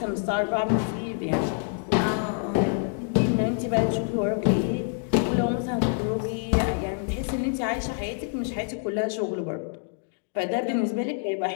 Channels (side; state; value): right; silent; 61 dB below the other